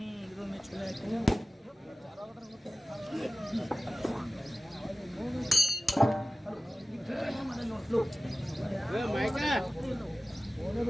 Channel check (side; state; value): both; normal; correlation 0.97